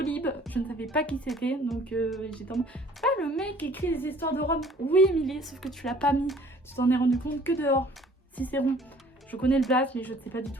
je ne savais pas qui c'était, donc j'étais en mode ah le mec qui écrit les histoires de Rome. Oui Émilie, sauf que tu l'as pas mis, tu t'en es rendu compte que dehors. Cicéron, je connais le blast mais je ne sais pas du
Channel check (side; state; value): both; normal; correlation 0.54